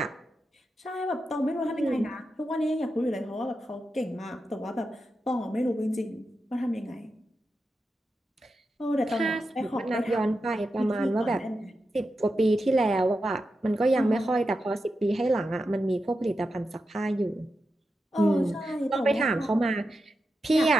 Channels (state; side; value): normal; both; correlation 0.89